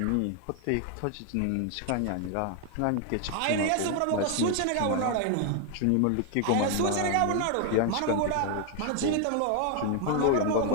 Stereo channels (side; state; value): both; different; correlation 0.01